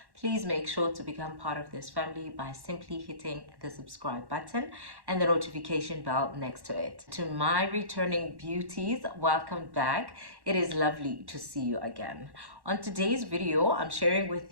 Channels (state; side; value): late; left; 1.1 ms